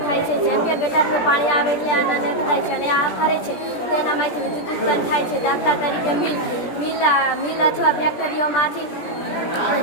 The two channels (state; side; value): late; right; 17 ms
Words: થાય છે. જેમ કે ગટરનું પાણી આવે એટલે આના નેટ થાય છે અને આ ફરે છે તેનામાંથી વિદ્યુત ઉત્પન્ન થાય છે. દાખલા તરીકે મિલ અથવા ફેક્ટરીઓમાંથી